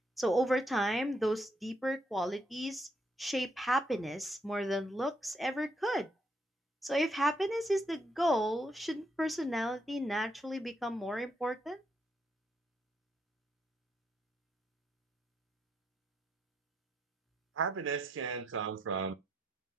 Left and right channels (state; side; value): normal; both; correlation 0.77